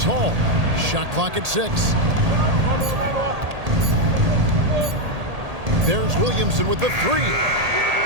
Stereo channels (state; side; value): late; left; 1.8 ms